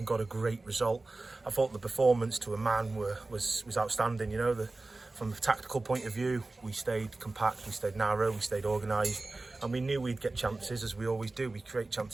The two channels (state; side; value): quieter; left; 3.2 dB